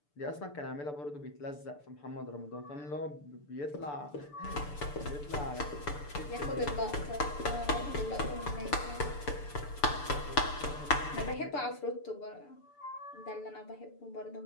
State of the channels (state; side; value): late; right; 6.8 ms